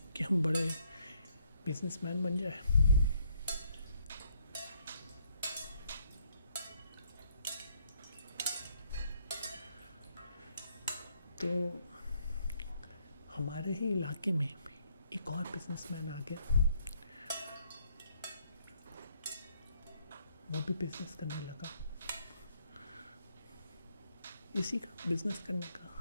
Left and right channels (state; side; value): inverted; both; correlation -0.70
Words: कि हम बड़े बिजनेसमैन बन जाए। तो हमारे ही इलाके में एक और बिजनेसमैन आ गया, वो भी बिजनेस करने लगा। इसी का बिजनेस करने का,